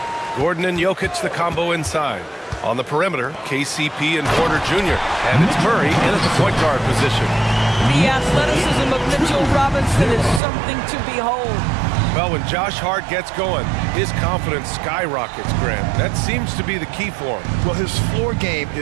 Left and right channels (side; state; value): left; drops out; at 10.4 s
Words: Gordon and Jokic, the combo inside. On the perimeter, KCP and Porter Jr. And it's Murray in at the point guard position. The athleticism of Mitchell Robinson is something to behold. Well, when Josh Hart gets going, his confidence skyrockets, Grant. That seems to be the key for him. Well, his floor game